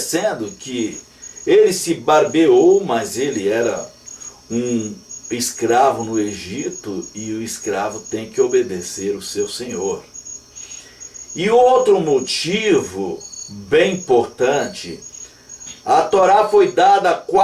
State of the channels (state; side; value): identical; both; correlation 1.00